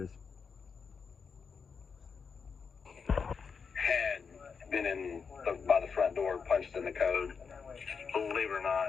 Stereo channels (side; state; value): right; quieter; 5.7 dB